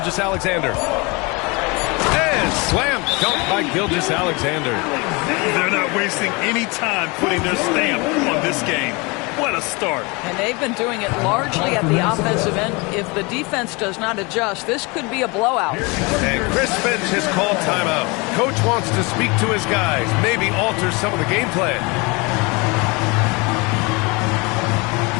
And slam dunk by Gilgeous-Alexander. They're not wasting any time putting their stamp on this game. What a start. And they've been doing it largely at the offensive end. If the defense does not adjust, this could be a blowout. And Chris Finch has called timeout. Coach wants to speak to his guys, maybe alter some of the game plan.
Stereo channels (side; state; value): right; quieter; 27.4 dB